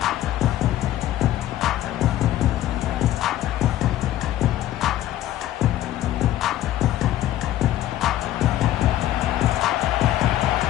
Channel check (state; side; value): quieter; right; 13.2 dB